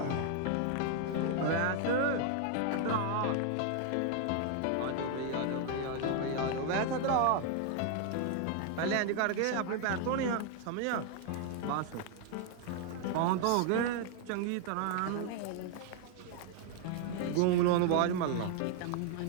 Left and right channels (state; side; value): different; both; correlation 0.00